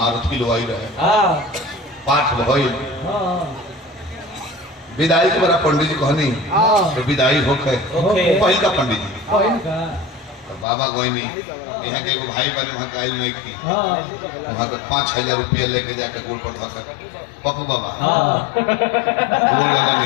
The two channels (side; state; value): right; drops out; at 10.7 s